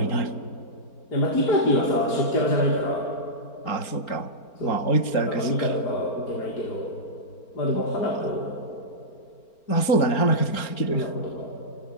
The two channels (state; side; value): late; right; 4.4 ms